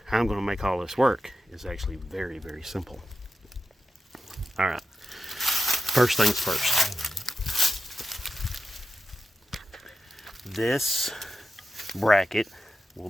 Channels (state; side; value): normal; both; correlation 0.90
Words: how I'm going to make all this work is actually very, very simple. All right. First things first. This bracket will